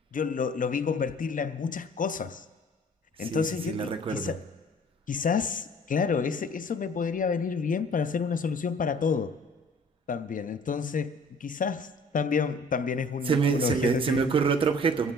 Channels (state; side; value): normal; both; correlation 0.51